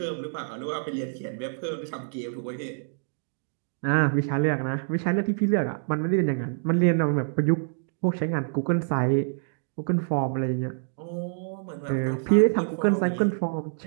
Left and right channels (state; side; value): silent; left; digital silence